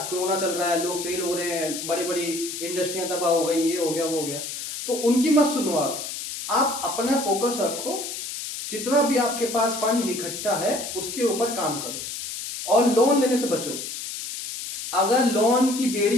कोरोना चल रहा है, लोग फेल हो रहे हैं, बड़ी बड़ी इंडस्ट्रियां तबाह हो गई, ये हो गया वो हो गया। तो उनकी मत सुनो, आप अपना फोकस रखो, जितना भी आपके पास फंड इकट्ठा है उसके ऊपर काम करो और लोन लेने से बचो। अगर लोन की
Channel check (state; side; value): noise; left; hiss, 7 dB below the sound